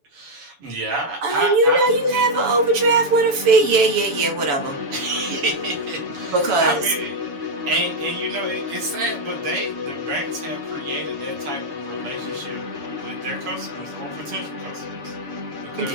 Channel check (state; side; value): late; left; 7.0 ms